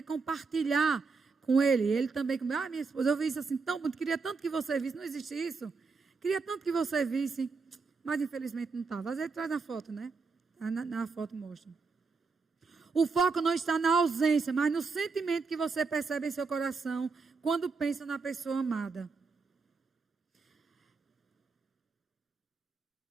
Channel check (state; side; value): quieter; left; 4.6 dB